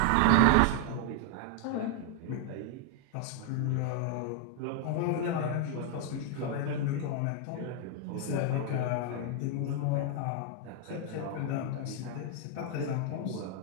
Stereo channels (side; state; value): both; different; correlation 0.00